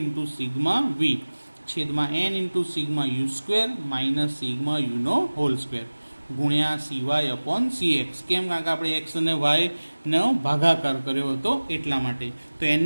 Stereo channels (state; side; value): inverted; both; correlation -1.00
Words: into sigma V છેદમાં n into sigma U square minus sigma યુનો હોલ સ્ક્વેર ગુણ્યા CY અપોન CX. કેમ? કારણ કે આપણે એક્સ અને વાયનો ભાગાકાર કર્યો હતો એટલા માટે. તો